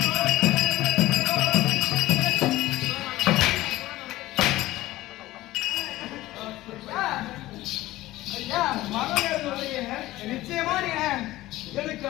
நிச்சயமா நீங்க எனக்கு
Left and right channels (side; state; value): right; quieter; 16.9 dB